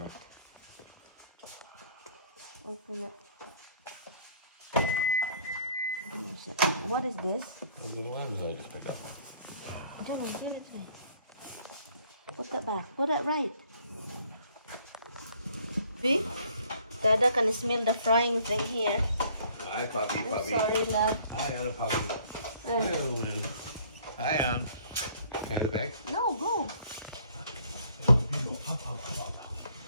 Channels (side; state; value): both; inverted; correlation -0.59